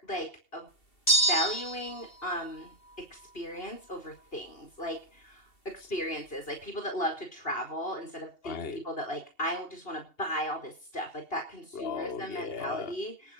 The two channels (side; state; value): right; late; 2.7 ms